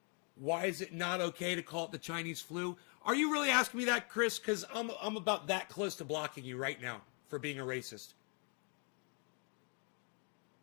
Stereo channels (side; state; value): right; quieter; 38.3 dB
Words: Why is it not okay to call it the Chinese flu? Are you really asking me that, Chris? Because I'm about that close to blocking you right now for being a racist.